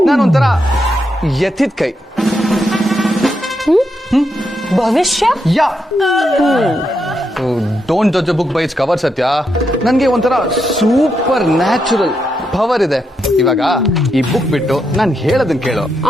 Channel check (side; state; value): both; normal; correlation 0.82